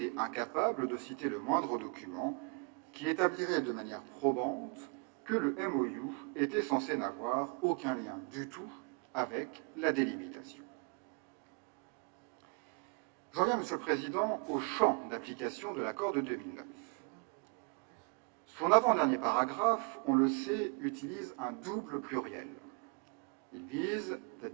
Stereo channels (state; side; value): quieter; left; 36.8 dB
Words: incapable de citer le moindre document qui établirait de manière probante que le MOU était censé n'avoir aucun lien du tout avec la délimitation. J'en viens, Monsieur le Président, au champ d'application de l'accord de 2009. Son avant-dernier paragraphe, on le sait, utilise un double pluriel. Il vise « the